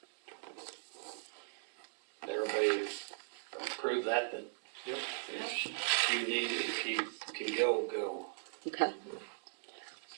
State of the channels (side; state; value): left; silent; digital silence